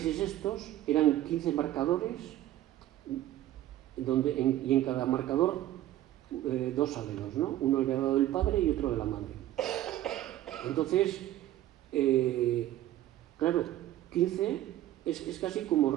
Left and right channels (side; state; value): left; quieter; 13.7 dB